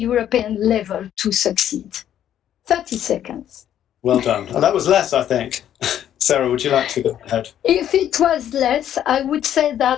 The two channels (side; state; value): right; quieter; 10.6 dB